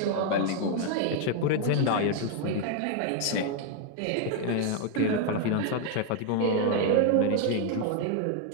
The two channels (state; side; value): different; both; correlation 0.00